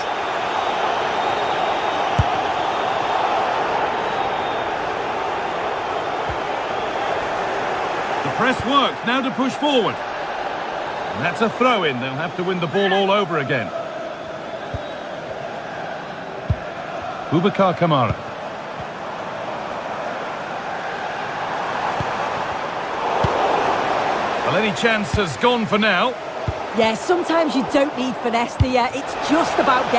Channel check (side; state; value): both; identical; correlation 1.00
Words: The press works. Now to push forward. And that's a throw-in. They'll have to win the ball all over again. Boubacar Kamara. Well, any chance has gone for now. Yeah, sometimes you don't need finesse, do you? It's just about